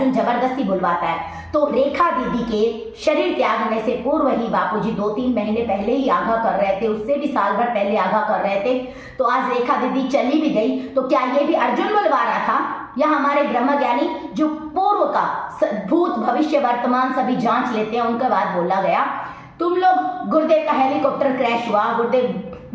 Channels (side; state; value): both; identical; correlation 1.00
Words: जबरदस्ती बुलवाता है, तो रेखा दीदी के शरीर त्यागने से पूर्व ही बापूजी 2-3 महीने पहले ही आगाह कर रहे थे, उससे भी साल भर पहले आगाह कर रहे थे। तो आज रेखा दीदी चली भी गई तो क्या ये भी अर्जुन बुलवा रहा था, या हमारे ब्रह्मज्ञानी जो पूर्व का भूत भविष्य वर्तमान सभी जांच लेते हैं उनके बाद बोला गया। तुम लोग गुरुदेव का हेलीकॉप्टर क्रैश हुआ, गुरुदेव